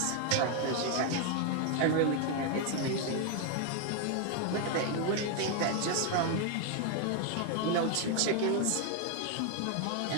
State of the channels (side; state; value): both; different; correlation 0.01